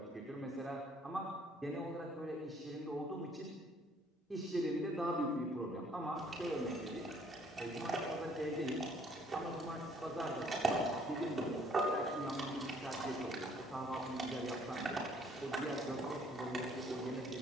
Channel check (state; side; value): normal; both; correlation 0.61